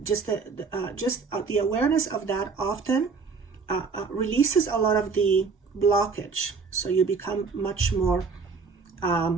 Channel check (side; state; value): left; quieter; 4.9 dB